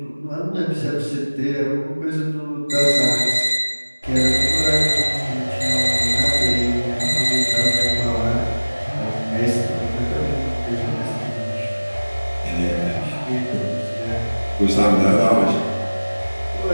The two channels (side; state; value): both; inverted; correlation -1.00